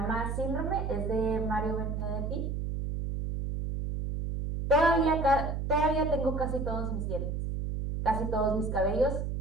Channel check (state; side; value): noise; right; hum, 2 dB below the sound